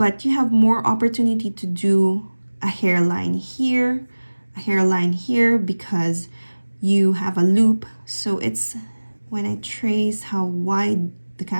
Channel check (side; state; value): both; inverted; correlation -1.00